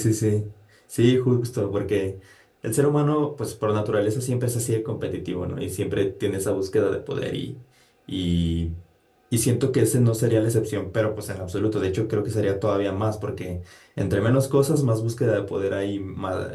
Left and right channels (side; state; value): both; identical; correlation 1.00